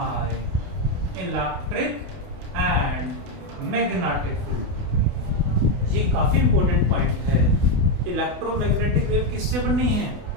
electric and magnetic field. ये काफी इंपॉर्टेंट पॉइंट है। इलेक्ट्रोमैग्नेटिक वेव किससे बनी है?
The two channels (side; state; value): left; late; 28 ms